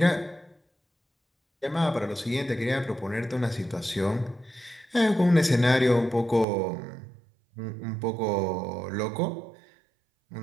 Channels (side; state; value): left; drops out; at 6.5 s